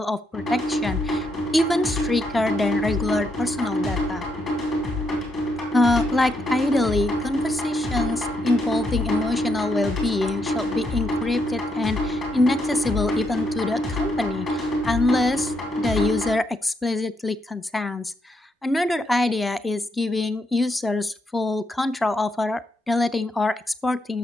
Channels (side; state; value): both; normal; correlation 0.78